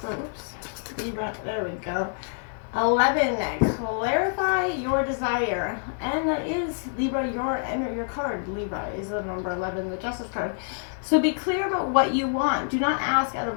Libra, there we go. 11, clarify your desire. And that is, Libra, your card, Libra, is the number 11, the Justice card. So be clear about what you want. Do not ask out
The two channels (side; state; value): right; silent; 60 dB below the other